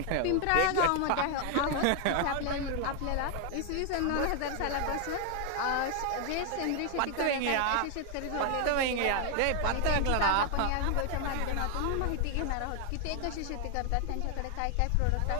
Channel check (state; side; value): different; both; correlation 0.00